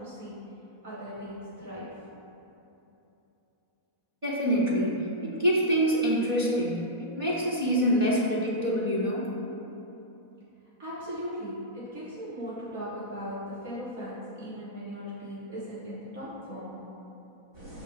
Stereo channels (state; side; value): late; left; 4.1 ms